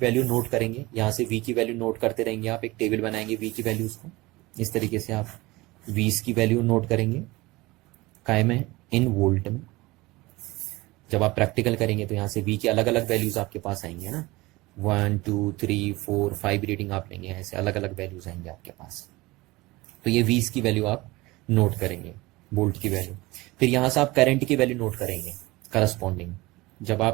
नोट करेंगे, यहाँ से V की वैल्यू नोट करते रहेंगे, आप एक टेबल बनाएंगे V की वैल्यूज को, इस तरीके से आप V's की वैल्यू नोट करेंगे, काय में, इन वोल्ट में। जब आप प्रैक्टिकल करेंगे तो यहाँ से V की अलग अलग वैल्यूज आपके पास आएंगे ना, 1 2 3 4 5 रीडिंग आप लेंगे, ऐसे अलग अलग वैल्यूज आएंगे आपके पास। तो ये V's की वैल्यू आप नोट करेंगे, वोल्ट की वैल्यू। फिर यहाँ से आप करंट की वैल्यू नोट करेंगे करस्पॉन्डिंग। जब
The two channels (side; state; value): left; quieter; 21.2 dB